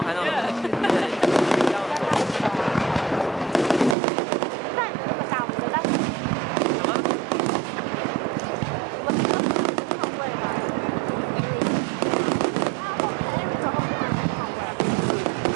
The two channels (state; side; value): drops out; left; at 4.0 s